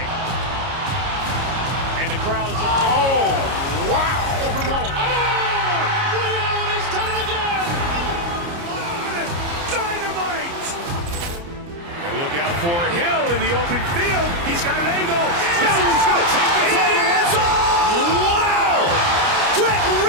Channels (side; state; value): left; late; 29 ms